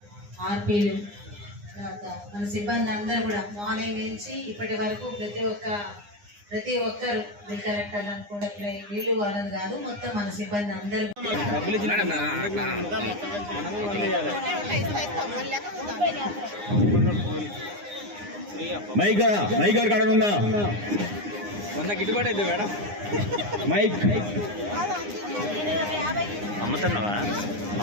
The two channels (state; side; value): late; left; 9.8 ms